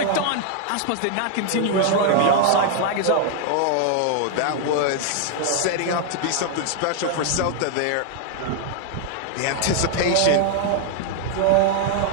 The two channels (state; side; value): different; both; correlation 0.00